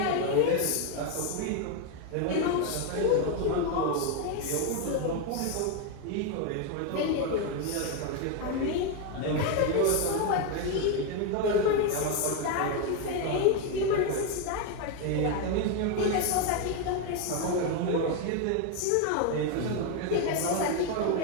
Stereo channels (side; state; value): both; different; correlation 0.01